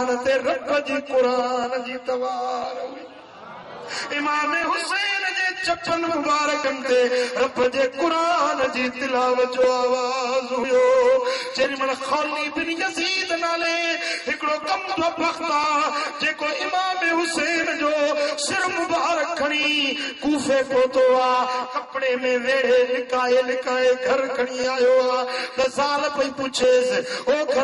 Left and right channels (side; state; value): both; identical; correlation 1.00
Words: ते रब जी क़ुरान जी तवार हुई। इमाम हुसैन जे चपन मुबारकनि ते रब जे क़ुरान जी तिलावत जो आवाज़ हुयो। जेॾी महिल खौली बिन यज़ीद नाले हिकिड़ो कमज़ो बख़्त आहे, जेको इमाम हुसैन जो सिर मुबारक खणी कूफे पहुतो आहे, कपिड़े में वेड़े लिकाए लिकाए घर खणी आयो आहे। त ज़ाल पई पुछेसि, ओ